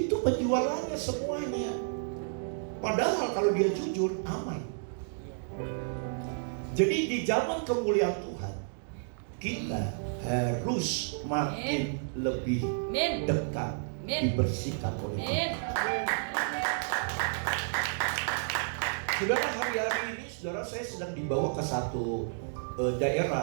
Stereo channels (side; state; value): left; silent; digital silence